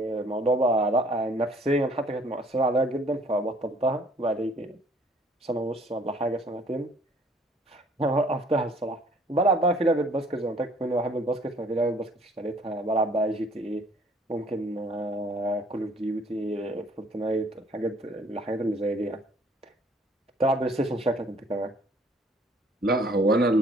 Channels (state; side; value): normal; both; correlation 0.58